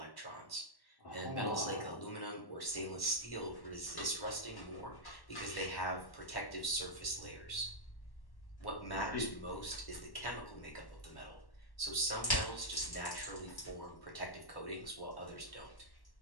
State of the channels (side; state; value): right; late; 1.1 ms